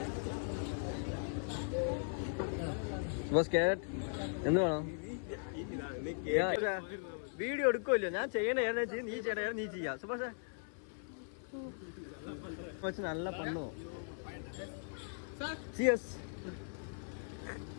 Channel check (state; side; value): silent; right; 52 dB below the other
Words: സുഭാഷ് ക്യാരറ്റ് എന്ത് വേണം? വീഡിയോ എടുക്കുമല്ലോ, ഞാൻ ചെയ്യണ നീ ചെയ്യണ നീ ചെയ്യാം. സുഭാഷ് നല്ല പണ്ണോ. ചിയേഴ്സ്.